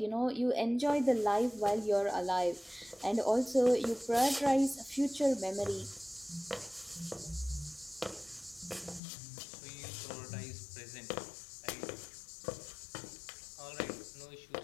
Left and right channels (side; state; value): right; drops out; at 9.0 s